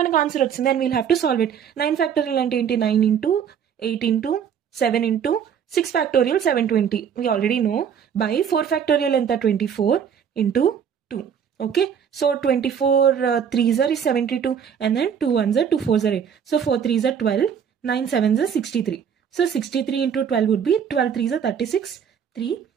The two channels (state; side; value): quieter; left; 7.9 dB